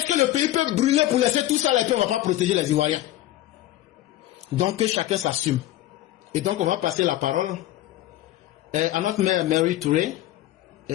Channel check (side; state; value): right; quieter; 14.7 dB